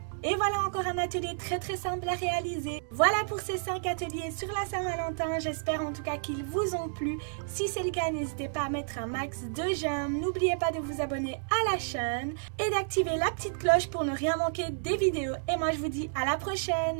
Et voilà encore un atelier très simple à réaliser. Voilà pour ces 5 ateliers sur la Saint-Valentin. J'espère en tout cas qu'ils vous ont plu. Si c'est le cas, n'hésitez pas à mettre un max de j'aime. N'oubliez pas de vous abonner à la chaîne et d'activer la petite cloche pour ne rien manquer des vidéos. Et moi je vous dis à la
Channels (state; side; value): silent; left; digital silence